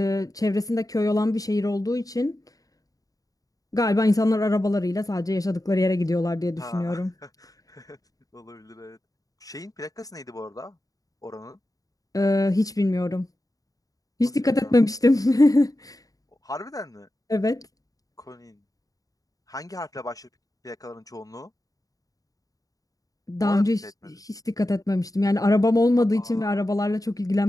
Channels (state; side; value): late; right; 0.17 ms